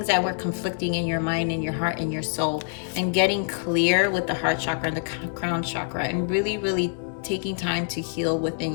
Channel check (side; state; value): right; silent; digital silence